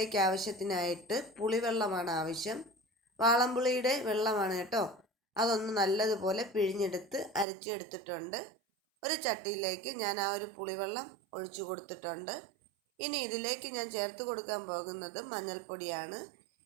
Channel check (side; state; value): left; drops out; at 7.5 s